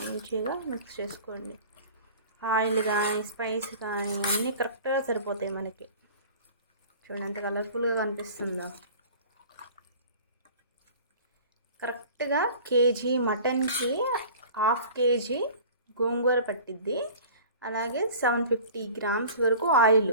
మిక్స్ చేసుకోండి. ఆయిల్ కానీ స్పైస్ కానీ అన్నీ కరెక్ట్గా సరిపోతాయి మనకి. చూడండి ఎంత కలర్ఫుల్గా కనిపిస్తుందో. కరెక్ట్గా కేజీ మటన్కి 1/2 kg గోంగూర పట్టిద్ది. అలాగే 750 grams వరకు ఆయిల్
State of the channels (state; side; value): inverted; both; correlation -0.43